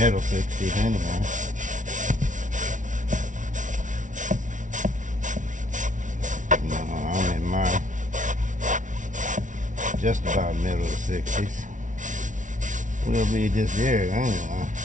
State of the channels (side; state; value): left; late; 0.37 ms